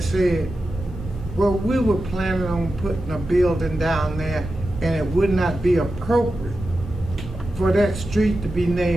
said, well, we were planning on putting a building down there, and it would not be appropriate for that street to be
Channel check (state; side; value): normal; both; correlation 0.91